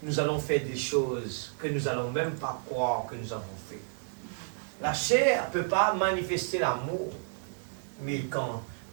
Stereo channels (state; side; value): silent; left; digital silence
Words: nous allons faire des choses que nous n'allons même pas croire que nous avons fait. La chair ne peut pas manifester l'amour, mais quand